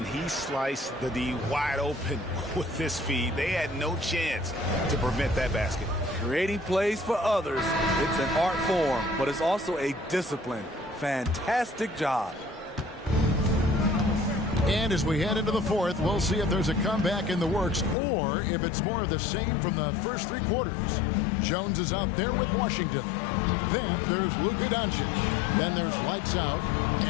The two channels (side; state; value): right; drops out; at 17.9 s